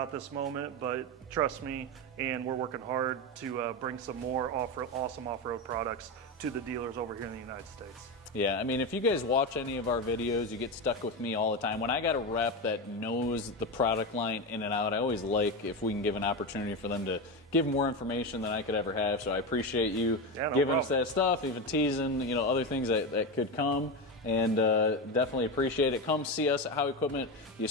at this moment, but trust me, and we're working hard to bring some more awesome off-road products to the dealers over here in the United States. Yeah, I mean, if you guys watch any of our videos, you get stuck with me all the time. When I got a rep that knows the product line in and out, I always like if we can give an opportunity for them to give more information than I could ever have. So I appreciate you giving us that stuff, even teasing, you know, other things that could come. And definitely appreciate it. Come see us at Howe Equipment. You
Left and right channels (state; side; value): normal; both; correlation 0.16